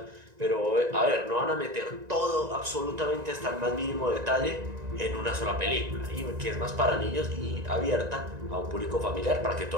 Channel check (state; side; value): late; left; 1.9 ms